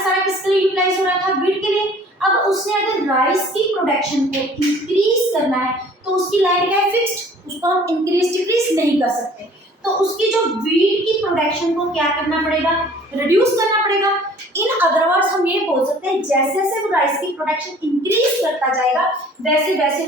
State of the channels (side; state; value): both; normal; correlation 0.52